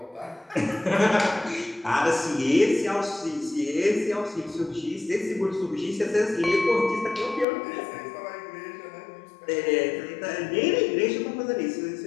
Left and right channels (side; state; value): right; drops out; at 7.5 s